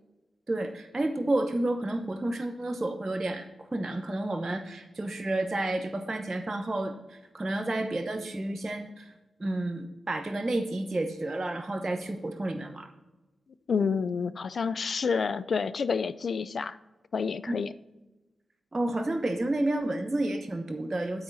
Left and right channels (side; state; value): both; normal; correlation 0.91